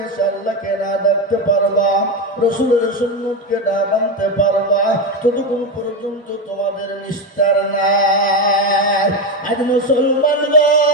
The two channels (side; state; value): both; normal; correlation 0.13